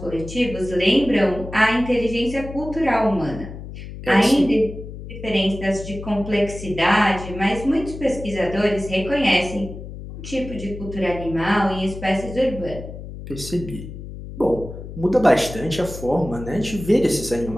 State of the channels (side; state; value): left; noise; hum, 11 dB below the sound